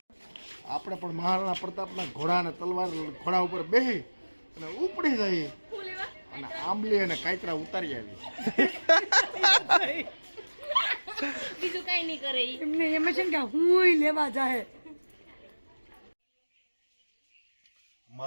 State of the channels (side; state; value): both; inverted; correlation -1.00